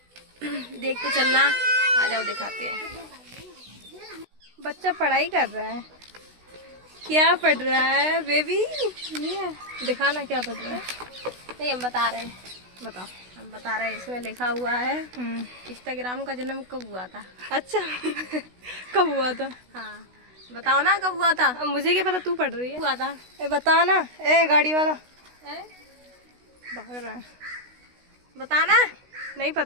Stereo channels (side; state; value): left; late; 16 ms